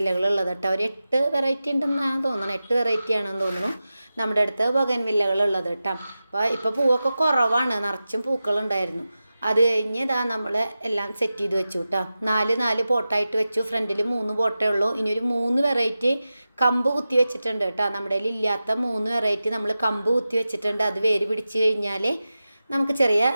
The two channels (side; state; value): both; inverted; correlation -0.94